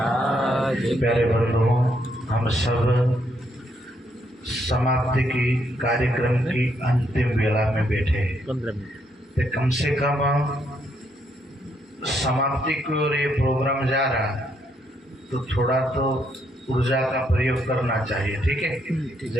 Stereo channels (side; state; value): both; normal; correlation 0.75